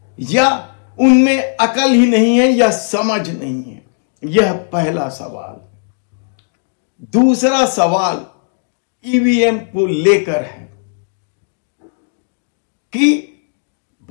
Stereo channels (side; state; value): right; silent; digital silence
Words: या उनमें अकल ही नहीं है या समझ नहीं है? यह पहला सवाल। दूसरा सवाल ईवीएम को लेकर है कि